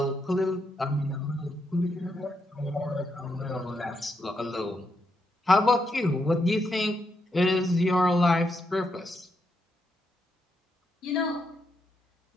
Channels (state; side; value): normal; both; correlation 0.81